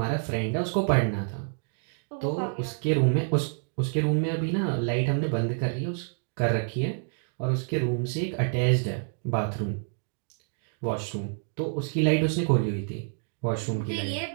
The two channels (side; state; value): left; silent; 59 dB below the other